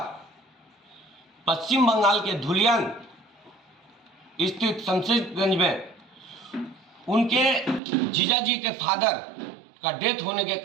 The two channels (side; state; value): left; drops out; at 7.8 s